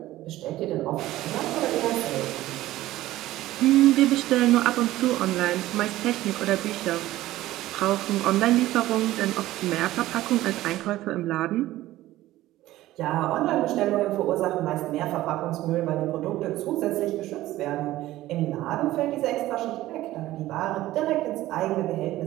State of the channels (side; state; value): left; quieter; 15.8 dB